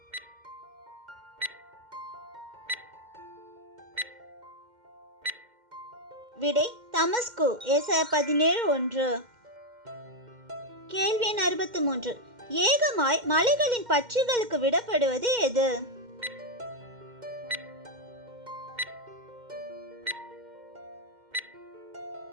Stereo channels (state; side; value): late; left; 2.1 ms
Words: விடை தமஸ்கு. ஏசாயா 17:1. கேள்வி எண் 63. ஏகமாய் மலைகளின் பட்சிகளுக்கு விடப்படுவது எது?